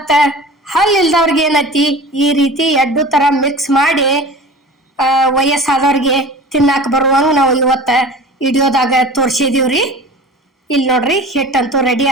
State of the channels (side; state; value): both; normal; correlation 0.38